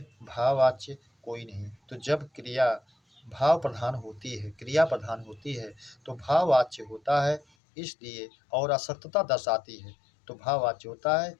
भाववाच्य कोई नहीं। तो जब क्रिया भाव प्रधान होती है, क्रिया प्रधान होती है, तो भाववाच्य होता है, इसलिए और असक्तता दर्शाती है तो भाववाच्य होता है,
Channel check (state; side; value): drops out; right; at 7.5 s